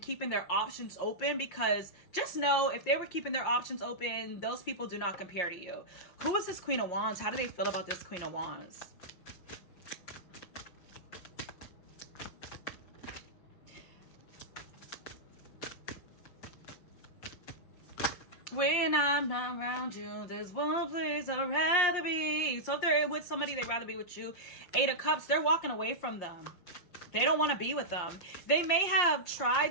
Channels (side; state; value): right; late; 5.6 ms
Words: keeping their options open, because just know if they were keeping their options open, those people do not compare to you. Who is this Queen of Wands? How do they feel about this Queen of Wands? When I'm not around you, there's one place I'd rather be. So if they're with somebody, they'd rather be with you. 8 of Cups, they're walking away from them. They don't want to be with them. They may have